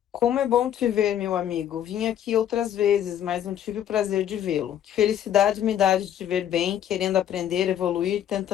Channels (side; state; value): right; quieter; 10.4 dB